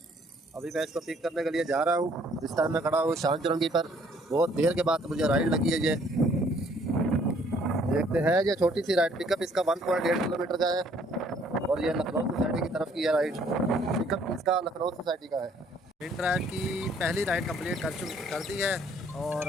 अभी मैं इसको पिक करने के लिए जा रहा हूँ। इस टाइम मैं खड़ा हूँ शान चुरंगी पर। बहुत देर के बाद मुझे राइड लगी है ये। देखते हैं, ये छोटी सी राइड पिकअप इसका 1.8 किलोमीटर का है और ये लखनऊ सोसाइटी की तरफ की है राइड। पिकअप इसका लखनऊ सोसाइटी का है। इन ड्राइव की पहली राइड कंप्लीट कर दी है और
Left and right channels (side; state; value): both; normal; correlation 0.62